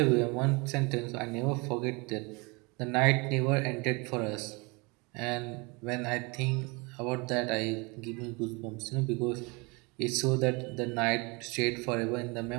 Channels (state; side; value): quieter; left; 28.0 dB